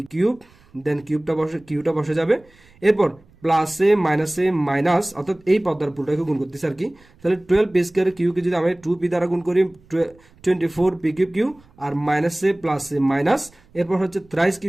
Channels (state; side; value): noise; right; rumble, 29 dB below the sound